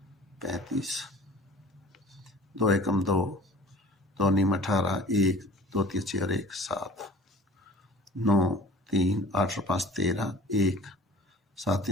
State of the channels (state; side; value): normal; both; correlation 0.45